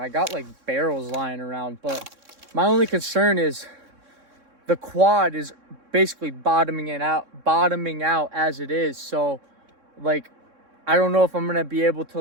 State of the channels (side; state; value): left; late; 3.6 ms